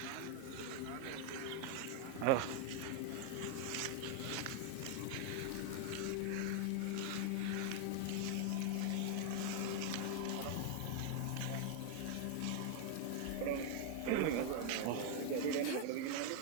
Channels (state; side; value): different; both; correlation 0.00